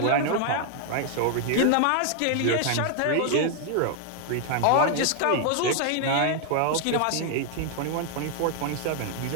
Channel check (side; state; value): both; different; correlation 0.00